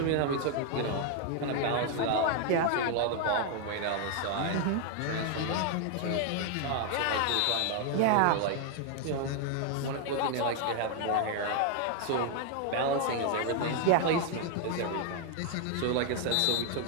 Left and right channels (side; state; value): both; different; correlation 0.00